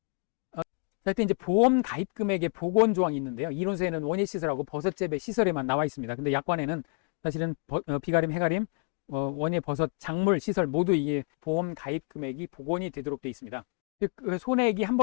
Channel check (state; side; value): quieter; right; 36.7 dB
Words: 이때 이제 보험 가입 금액의 복원 조항이 있는데요. 이론서에는 원예 시설하고 버섯재배 시설에만 나와 있습니다. 근데 약관에는 사실은 비가림, 해가림, 원예 버섯 작물 시설 모두 이게 보험 가입 금액이 복원이 되도록 되어 있습니다. 즉 손해액이 한